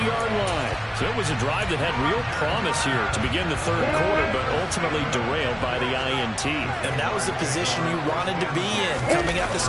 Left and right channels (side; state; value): both; identical; correlation 1.00